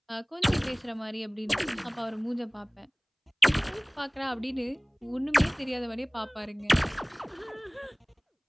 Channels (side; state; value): both; identical; correlation 1.00